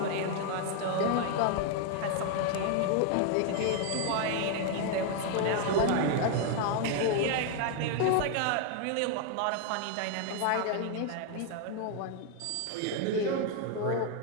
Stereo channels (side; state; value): both; different; correlation 0.00